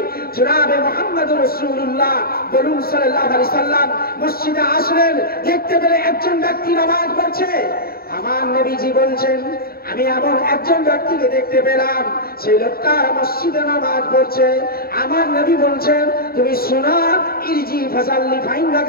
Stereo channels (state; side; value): late; right; 0.44 ms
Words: জনাবে মুহাম্মদুর রাসূলুল্লাহ বলুন সাল্লাল্লাহু আলাইহি সাল্লাম মসজিদে আসলেন, দেখতে পেলে একজন ব্যক্তি নামাজ পড়ছে। আমার নবীজি বলছেন, আমি এমন একজন ব্যক্তিকে দেখতে পেলাম, সেই লোকটা মসজিদে নামাজ পড়ছে। আমার নবী বলছেন, তুমি শোনা, ইরজি ফাসাল্লি